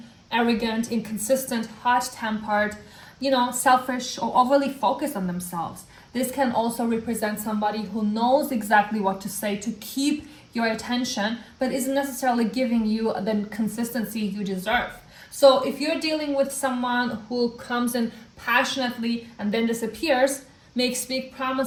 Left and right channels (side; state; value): both; identical; correlation 1.00